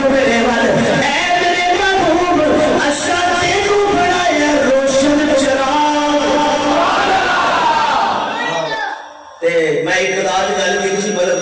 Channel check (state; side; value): identical; both; correlation 1.00